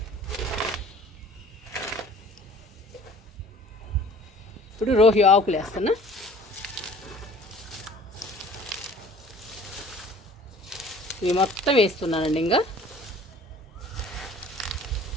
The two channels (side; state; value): both; normal; correlation 0.49